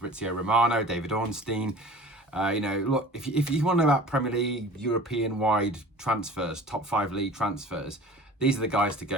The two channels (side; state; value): both; normal; correlation 0.42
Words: Romano, David Ornstein. Look, if you want to know about Premier League, European-wide transfers, top 5 league transfers, these are the guys to